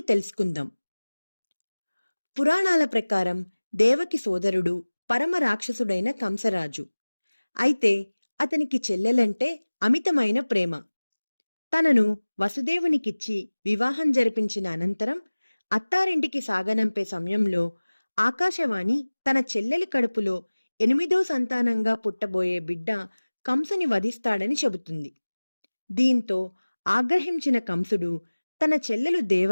తెలుసుకుందాం. పురాణాల ప్రకారం దేవకి సోదరుడు పరమ రాక్షసుడైన కంసరాజు. అయితే అతనికి చెల్లెలంటే అమితమైన ప్రేమ. తనను వసుదేవునికిచ్చి వివాహం జరిపించిన అనంతరం అత్తారింటికి సాగనంపే సమయంలో ఆకాశవాణి తన చెల్లెలి కడుపులో 8వ సంతానంగా పుట్టబోయే బిడ్డ కంసుని వధిస్తాడని చెబుతుంది. దీంతో ఆగ్రహించిన కంసుడు తన చెల్లెలు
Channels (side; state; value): both; inverted; correlation -1.00